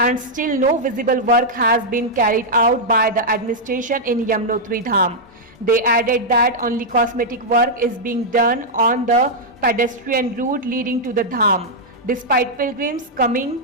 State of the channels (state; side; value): normal; both; correlation -0.05